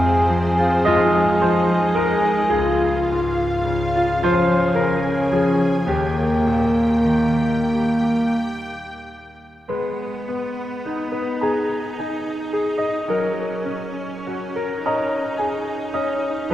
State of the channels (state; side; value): normal; both; correlation 0.89